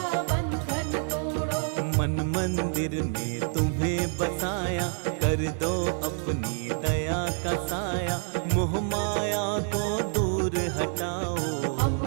बंधन तोड़ो, मन मंदिर में तुम्हें बसाया, कर दो अपनी दया का साया, मोह माया को दूर हटाओ।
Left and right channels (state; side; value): silent; left; 60 dB below the other